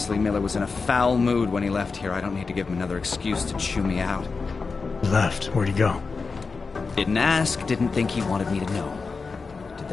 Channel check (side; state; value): right; quieter; 4.5 dB